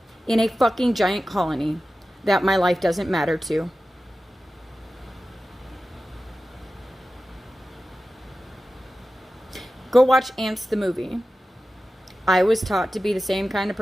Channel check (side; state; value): both; normal; correlation 0.94